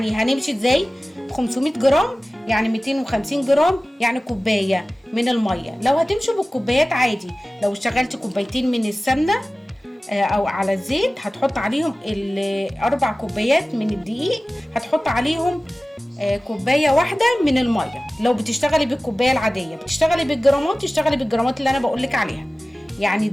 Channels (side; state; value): both; normal; correlation 0.97